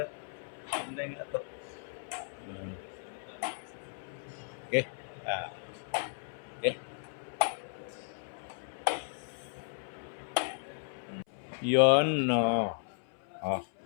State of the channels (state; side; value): silent; right; 55 dB below the other